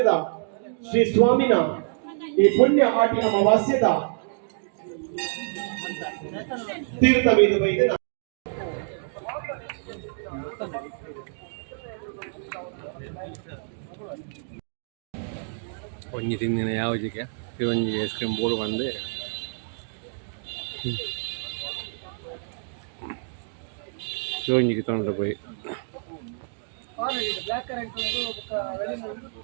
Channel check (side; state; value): left; silent; 60 dB below the other